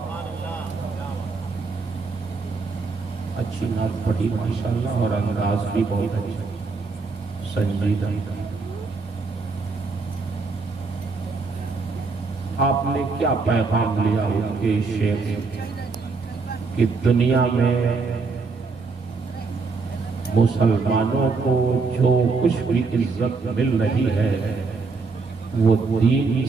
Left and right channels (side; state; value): left; quieter; 4.4 dB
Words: اچھی نعت پڑھی ماشاءاللہ، اور انداز بھی بہت اچھا سنجیدہ. آپ نے کیا پیغام لیا ان کے شعر سے کہ دنیا میں مسلمانوں کو جو کچھ بھی عزت مل رہی ہے وہ دین